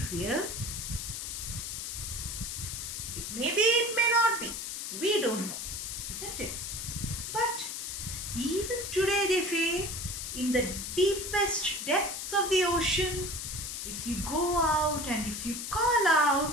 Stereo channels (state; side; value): noise; left; hiss, 5 dB below the sound